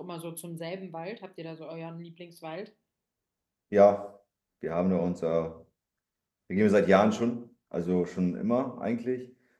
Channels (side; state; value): both; identical; correlation 1.00